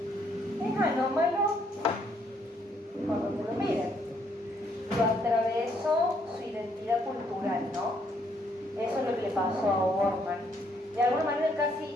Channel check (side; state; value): both; normal; correlation 0.70